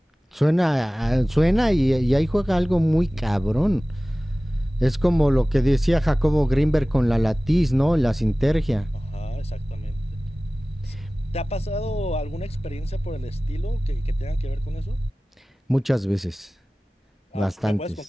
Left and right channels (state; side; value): normal; both; correlation 0.98